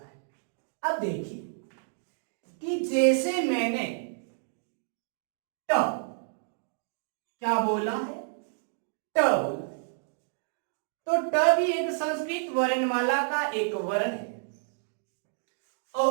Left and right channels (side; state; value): left; silent; digital silence